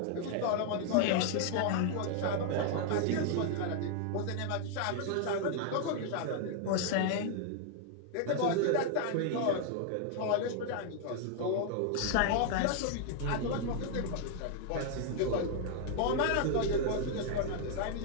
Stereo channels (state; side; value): different; both; correlation 0.00